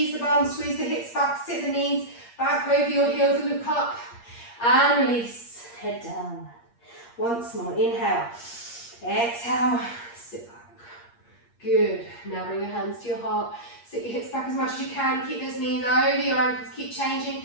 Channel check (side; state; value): right; late; 8.5 ms